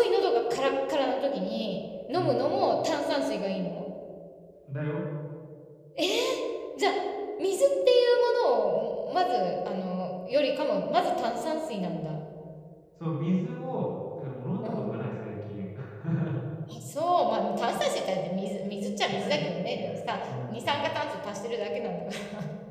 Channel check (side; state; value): both; identical; correlation 1.00